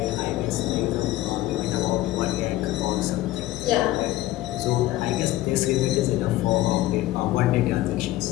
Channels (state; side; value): quieter; right; 16.1 dB